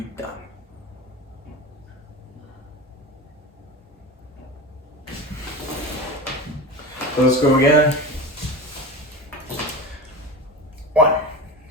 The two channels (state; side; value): normal; both; correlation 0.29